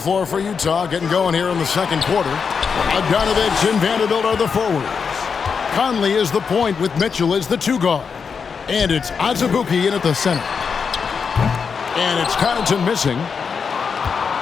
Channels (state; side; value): quieter; right; 5.9 dB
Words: for Utah, getting going here in the second quarter. Bogdanovich and Vanderbilt are the forwards. Conley is the point with Mitchell as the 2-guard. And it's Azubuike in at the center. And it's Connaughton missing.